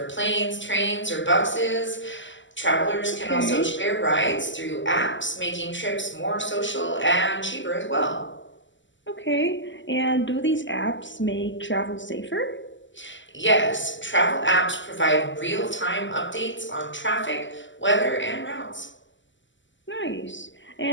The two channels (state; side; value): late; right; 0.54 ms